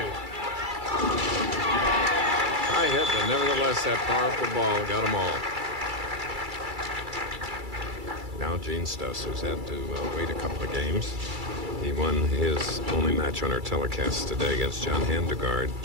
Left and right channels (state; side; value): late; left; 2.3 ms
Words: High hit, but nevertheless, that powerful ball got them all. Now Gene Stuss, who's had to wait a couple of games. He won his only match on our telecast today against John Handegard,